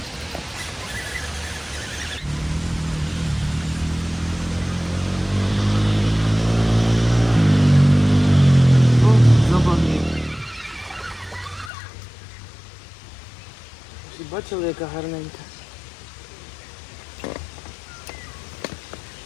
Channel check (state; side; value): drops out; right; at 11.7 s